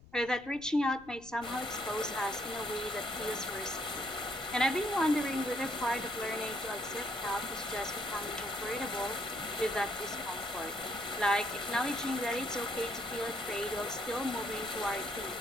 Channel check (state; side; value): noise; left; rumble, 22 dB below the sound